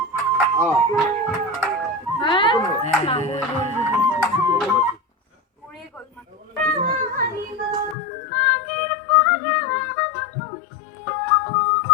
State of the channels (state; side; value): drops out; right; at 8.0 s